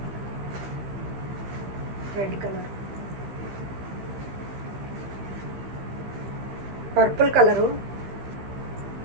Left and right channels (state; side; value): late; left; 15 ms